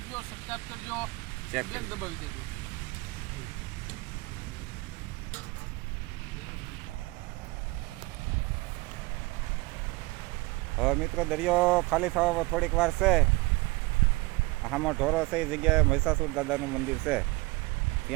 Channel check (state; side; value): quieter; left; 23.4 dB